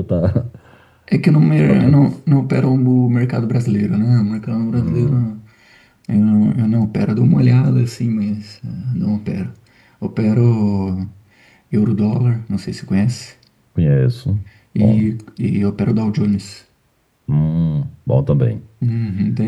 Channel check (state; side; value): identical; both; correlation 1.00